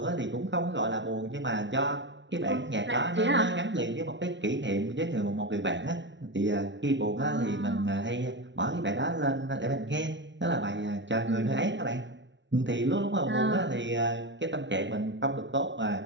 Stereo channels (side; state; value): left; late; 0.53 ms